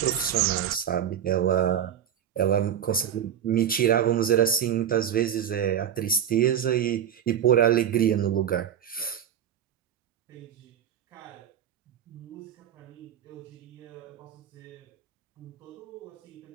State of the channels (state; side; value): quieter; left; 9.5 dB